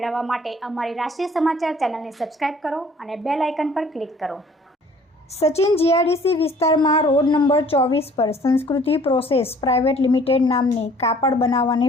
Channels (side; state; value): both; normal; correlation 0.54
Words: માટે અમારી રાષ્ટ્રીય સમાચાર ચેનલને સબસ્ક્રાઇબ કરો અને બેલ આઇકન પર ક્લિક કરો। સચિન જીઆઈડીસી વિસ્તારમાં રોડ નંબર 24 પર સંસ્કૃતિ પ્રોસેસ પ્રાઇવેટ લિમિટેડ નામની કાપડ